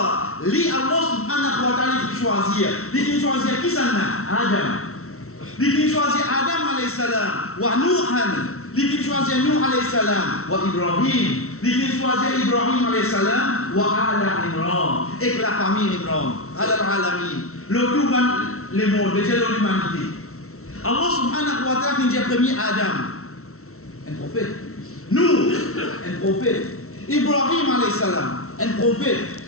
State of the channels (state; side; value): late; right; 0.63 ms